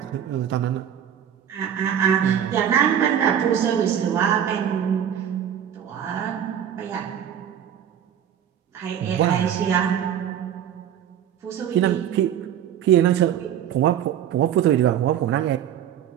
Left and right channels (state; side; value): quieter; left; 9.6 dB